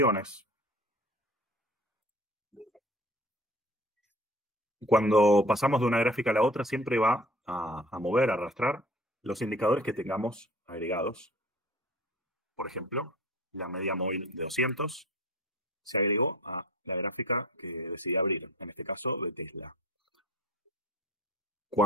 Cuando pasamos de una gráfica a la otra, siempre va a mover, a arrastrar los indicadores que tengamos agregados. Por ejemplo, la media móvil de 200 se agregó a la gráfica que decidí abrir, en este caso de Tesla.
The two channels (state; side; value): normal; both; correlation 0.43